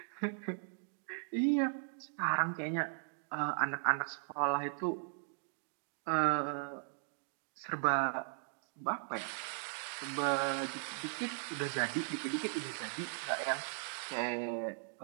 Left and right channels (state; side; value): silent; left; digital silence